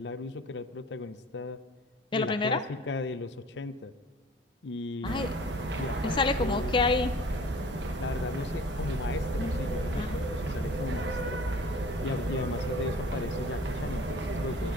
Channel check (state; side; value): normal; both; correlation 0.46